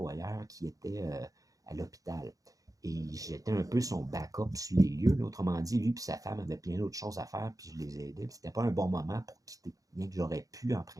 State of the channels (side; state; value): left; late; 0.17 ms